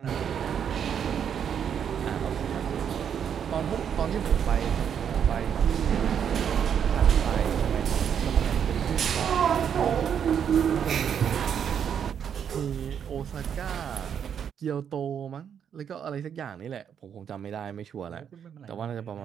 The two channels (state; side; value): quieter; left; 8.2 dB